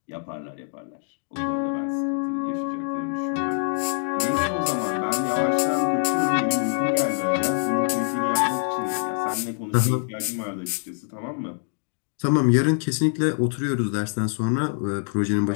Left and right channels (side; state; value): right; silent; 61 dB below the other